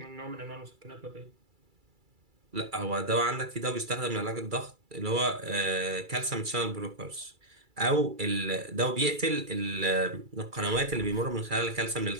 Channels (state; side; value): late; left; 2.3 ms